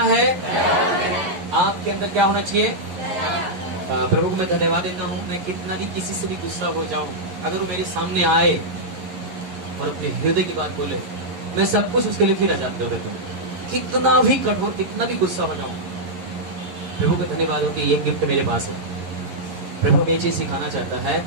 है। आपके अंदर क्या होना चाहिए? प्रभु को मैं धन्यवाद देता हूँ। मैं कितना भी किसी से भी गुस्सा हो जाऊं, अगर वो मेरे सामने आए और अपने हृदय की बात बोले, मैं सब कुछ उसके लिए फिर आजाद कर देता हूँ। कितना भी कठोर, कितना भी गुस्सा हो जाऊं, प्रभु को धन्यवाद हो कि ये गिफ्ट मेरे पास है। प्रभु हमें ये चीज सिखाना चाहता है,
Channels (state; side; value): late; left; 11 ms